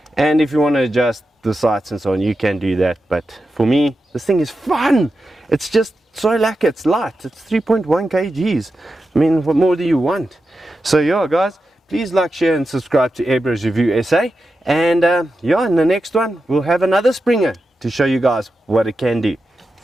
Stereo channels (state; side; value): normal; both; correlation 0.90